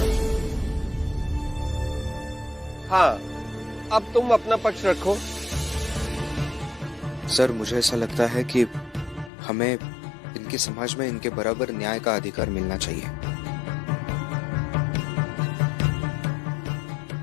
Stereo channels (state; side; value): drops out; right; at 9.3 s